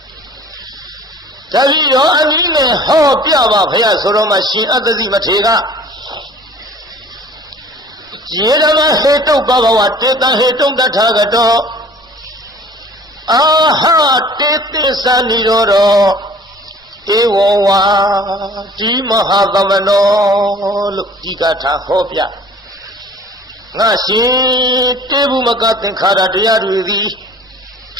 တပည့်တော်အနည်းနဲ့ဟောပြပါဗျာဆိုတော့မှရှင်အတ္တဇိမထေရက ယေဓမဟေတုဘဂဝတေတံဟေတုတထာဂတောအာဟတေတိသနိရောဓဧဝဝါဒီမဟာသမနောလို့ဒီကထာဟောပြငါရှင်တေဘုမကသင်္ခါရတရားတွေသည်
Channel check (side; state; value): both; normal; correlation 0.49